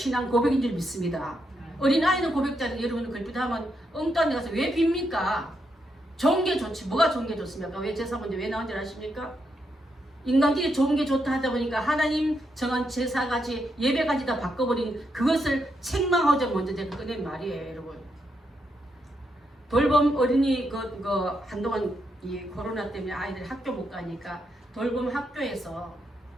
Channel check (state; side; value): normal; both; correlation 0.81